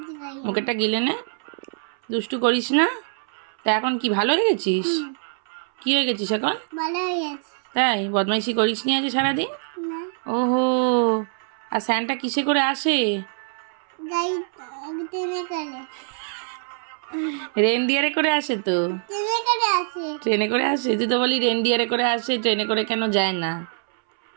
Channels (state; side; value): silent; left; 63 dB below the other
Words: মুখেরটা গিলে নে দুষ্টু করিস না তা এখন কি ভালো হয়ে গেছিস কি হয়ে গেছিস এখন তাই বদমাইশি করিস নি আজ সারাদিন ওহো আর স্যান্টা কিসে করে আসে রেনডিয়ারে করে আসে তো ট্রেনে করে আসে তুই তো বলি রেনডিয়ারে করে আসে ট্রেনে করে কেন যায় না